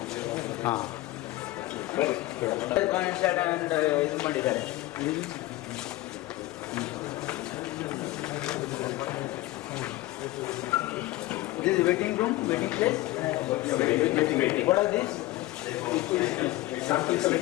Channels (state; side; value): quieter; right; 17.7 dB